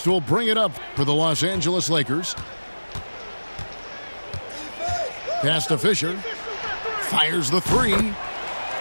will bring it up for the Los Angeles Lakers. Pass to Fisher. Fires the three.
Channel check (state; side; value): inverted; both; correlation -1.00